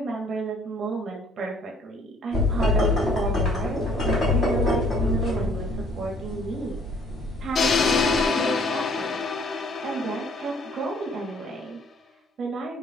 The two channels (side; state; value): both; normal; correlation 0.59